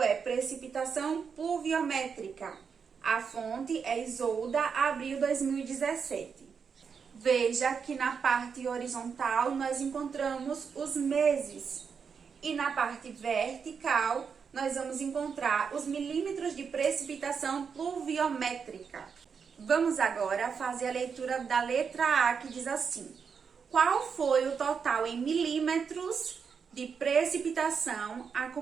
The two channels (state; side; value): quieter; left; 6.2 dB